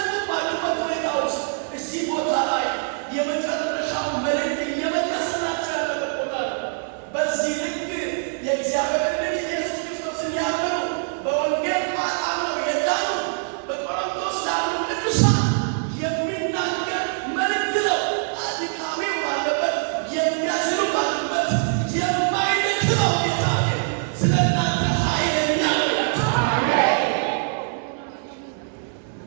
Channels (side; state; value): left; silent; digital silence